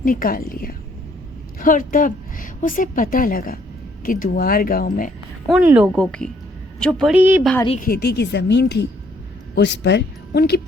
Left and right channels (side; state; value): both; normal; correlation 0.66